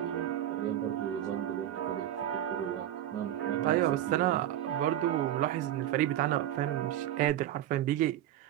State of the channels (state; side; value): quieter; left; 12.2 dB